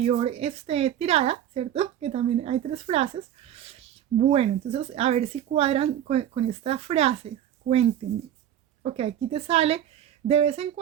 tirada, ¿cierto? Que también hay 3 frases. Bueno, entonces, a ver si cuadran con esta frase. Cuéntenme. Ok, aquí te sale, de vez en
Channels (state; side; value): quieter; left; 10.8 dB